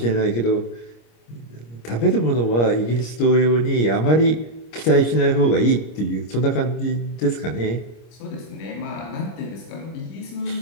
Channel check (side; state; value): right; late; 26 ms